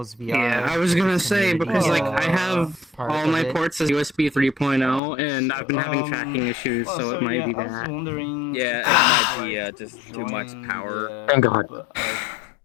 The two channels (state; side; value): drops out; right; at 5.0 s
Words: VR. Yeah, I was gonna say because like I have part all of my it. ports as USB 3.0 and I've been having tracking issues, so it might be I was that. wondering. Yeah, it might be just too much power. Thank God.